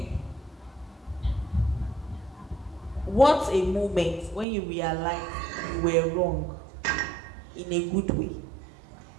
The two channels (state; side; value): drops out; left; at 4.5 s